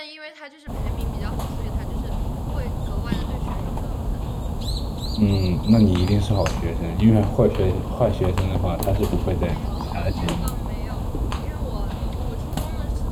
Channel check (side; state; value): both; identical; correlation 1.00